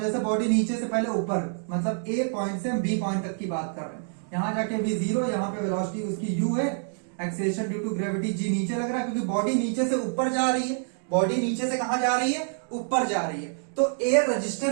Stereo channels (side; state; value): left; silent; digital silence